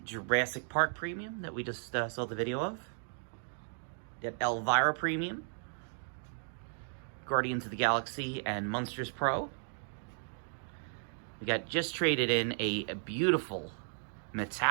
Park Premium that we just saw the video of. Got Elvira Premium, Guardians of the Galaxy and Monsters Pro. We got just traded in a beautiful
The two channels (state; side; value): silent; left; digital silence